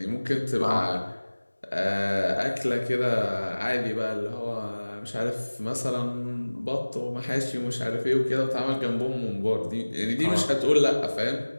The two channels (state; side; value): inverted; both; correlation -1.00